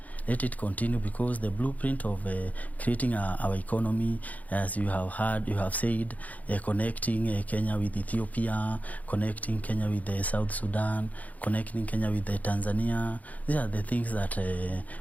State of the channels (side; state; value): right; late; 0.075 ms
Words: Let it continue, because the blueprint of creating our economy, as you have heard, you have said, connecting Kenya with Ethiopia, connecting Kenya with South Sudan, connecting Kenya with Tanzania. These are the things that